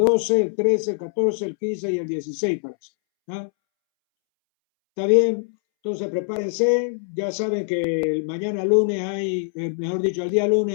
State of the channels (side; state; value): right; silent; 64 dB below the other